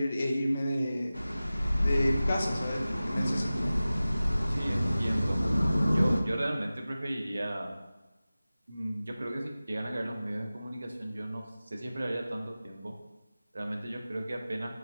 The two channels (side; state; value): both; inverted; correlation -0.96